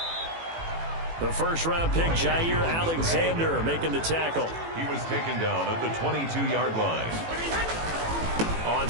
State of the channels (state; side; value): late; left; 18 ms